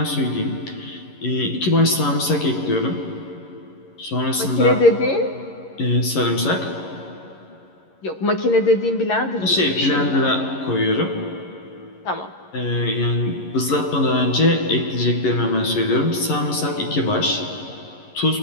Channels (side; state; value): right; late; 11 ms